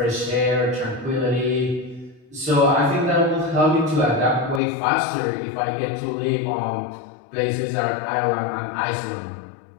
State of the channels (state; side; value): drops out; right; at 4.6 s